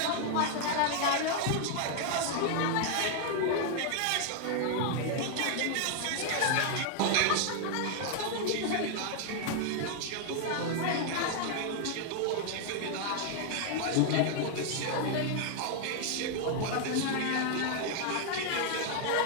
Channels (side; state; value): both; different; correlation 0.00